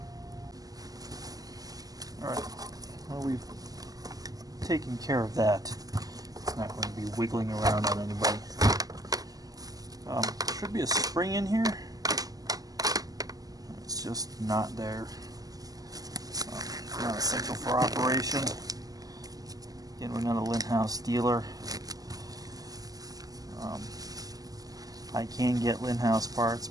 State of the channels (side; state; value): left; late; 0.17 ms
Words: Alright, well, we've taken care of that. It's not going to be wiggling around on anybody. There should be a spring in here. just not there. Not essential for operation. Again, we're not a Lindhaus dealer. I can get Lindhaus parts,